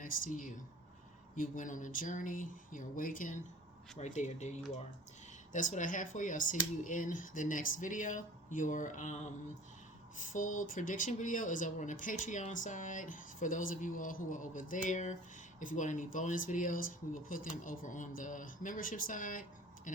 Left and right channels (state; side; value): normal; both; correlation 0.44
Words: to you. You went on a journey, you're awakened, right there, there you are. That's what I have for you. I'll see you in the next video. Your full prediction video is over on the Patreon side. For those of you all who are over there, if you want any bonus videos, we will put them over on the membership side. And